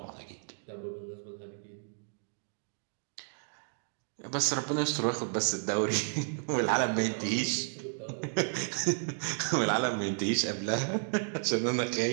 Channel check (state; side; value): silent; left; digital silence